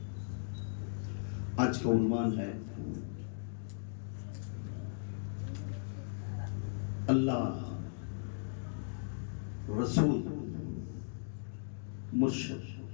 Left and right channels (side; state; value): right; silent; digital silence